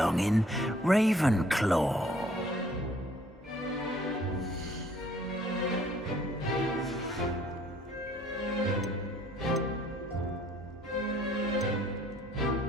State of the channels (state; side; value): normal; both; correlation 0.60